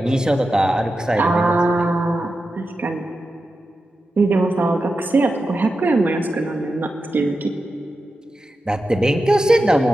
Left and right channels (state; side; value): normal; both; correlation 0.91